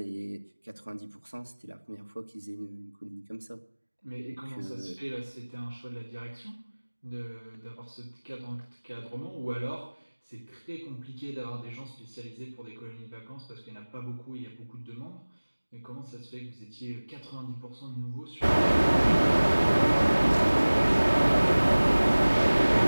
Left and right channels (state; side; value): inverted; both; correlation -1.00